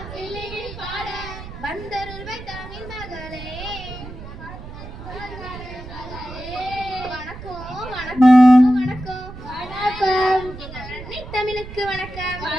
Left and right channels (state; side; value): noise; right; rumble, 12 dB below the sound